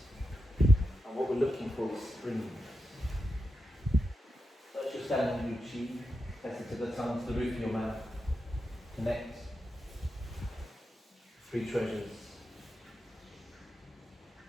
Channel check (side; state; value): both; normal; correlation 0.89